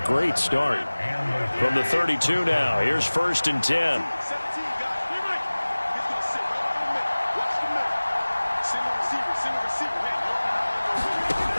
great start. From the 32 now, here's 1st and 10.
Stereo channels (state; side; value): inverted; both; correlation -1.00